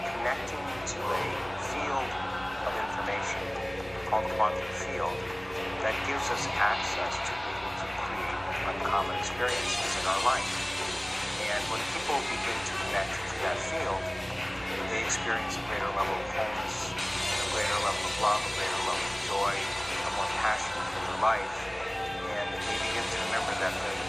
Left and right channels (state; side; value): noise; right; rumble, 22 dB below the sound